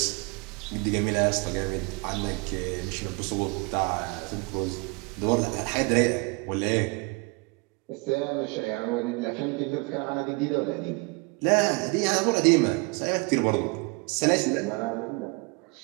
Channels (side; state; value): left; quieter; 28.7 dB